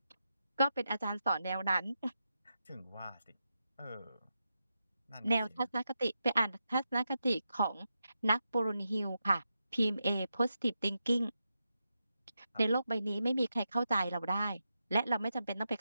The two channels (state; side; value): inverted; both; correlation -0.87